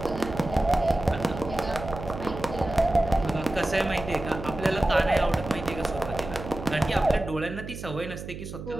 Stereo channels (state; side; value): noise; right; hum, 10 dB below the sound